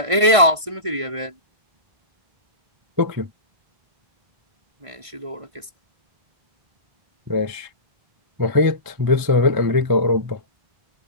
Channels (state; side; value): late; left; 1.5 ms